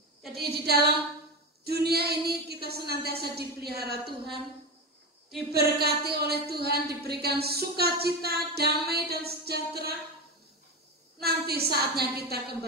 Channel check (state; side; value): normal; both; correlation 0.18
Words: Jadi di dalam dunia ini kita senantiasa dipelihara Tuhan, diberkati oleh Tuhan, diberikan sukacita, damai dan sejahtera. Nanti saatnya kita